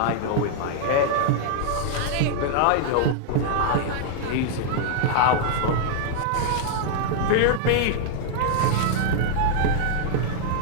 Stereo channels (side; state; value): both; different; correlation -0.01